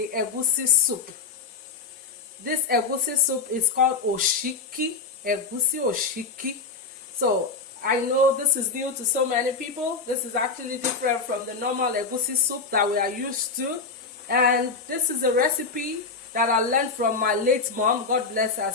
egusi soup. This egusi soup is called Osiki, Egusi Osiki. So I know this is new to so many people. This is actually different from the normal egusi soup that we are used to. And this is a recipe that I learned from my late mom. God bless her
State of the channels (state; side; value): quieter; right; 4.5 dB